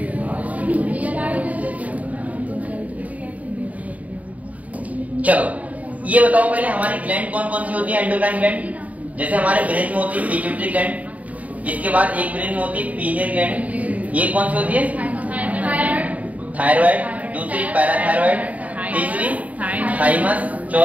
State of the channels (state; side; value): late; left; 0.070 ms